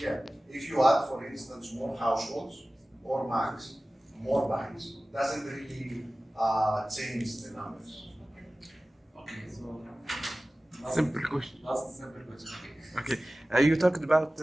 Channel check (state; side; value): normal; both; correlation 0.97